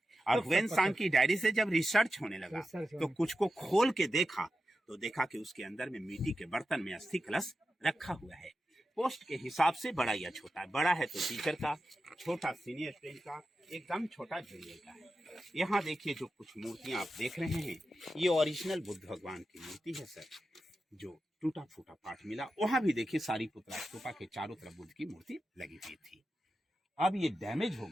और हुएन सांग की डायरी से जब रिसर्च होने लगा रिसर्च तो कुछ को खोल के देखा तो देखा कि उसके अंदर में मिट्टी के बर्तन में अस्थि कलश रखा हुआ है। पोस्ट के हिसाब से बड़ा या छोटा है, बड़ा है तो टीचर का, छोटा सीनियर स्टूडेंट का, एकदम छोटा जूनियर का है। यहाँ देखिए जो कुछ मूर्तियां आप देख रहे हैं ये ओरिजिनल बुद्ध भगवान की मूर्ति है सर, जो टूटा फूटा पार्ट मिला। वहां भी देखिए सारीपुत्रा स्तूपा के चारों तरफ बुद्ध की मूर्ति लगी हुई थी। अब ये डैमेज हो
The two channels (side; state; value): both; normal; correlation 0.91